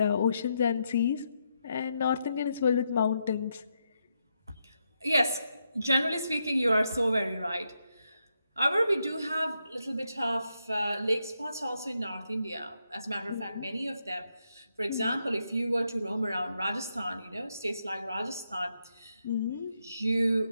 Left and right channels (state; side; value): inverted; both; correlation -0.82